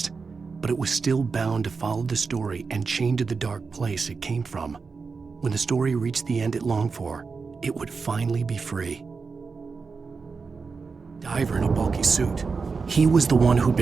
But it was still bound to follow the story and chained to the dark place it came from. When the story reached the end it longed for, it would finally be free. Diver in a bulky suit. He was the one who'd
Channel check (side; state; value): left; quieter; 4.8 dB